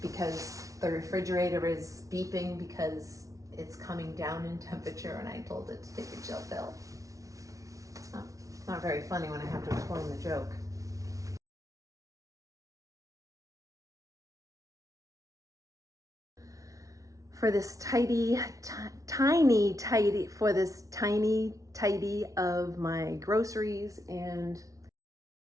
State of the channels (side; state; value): left; late; 0.17 ms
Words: Because the refrigerator is beeping because it's coming down in temperature, and I told it to take a chill pill. It's not very funny when I have to explain the joke. For this tiny tidy of my groceries and